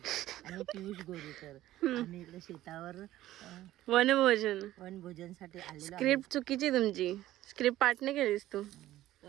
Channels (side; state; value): left; quieter; 14.7 dB